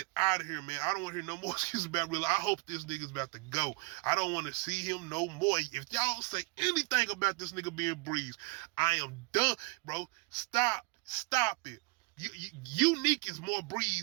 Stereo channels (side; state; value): left; quieter; 28.8 dB